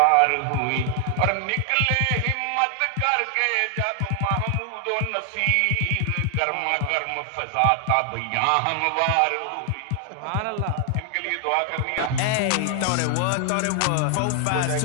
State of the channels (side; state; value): both; different; correlation 0.00